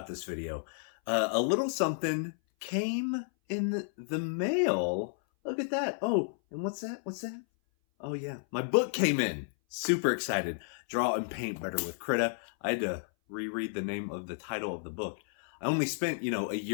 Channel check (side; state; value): right; silent; 56 dB below the other